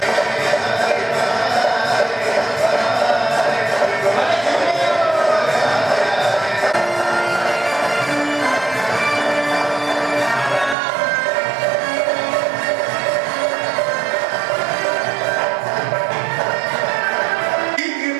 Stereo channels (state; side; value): drops out; left; at 10.8 s